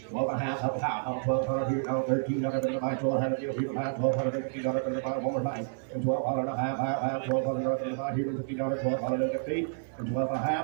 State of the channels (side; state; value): left; silent; 56 dB below the other